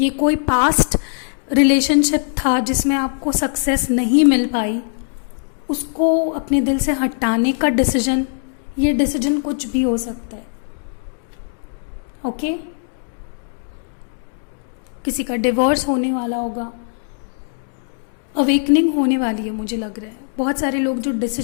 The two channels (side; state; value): right; silent; digital silence